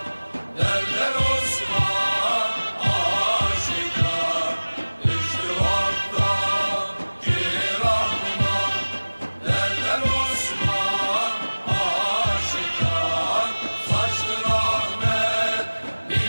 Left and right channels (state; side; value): inverted; both; correlation -1.00